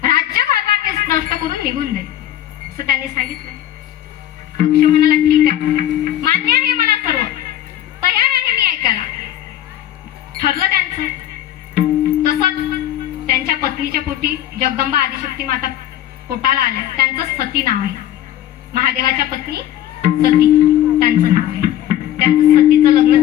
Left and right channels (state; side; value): quieter; right; 12.1 dB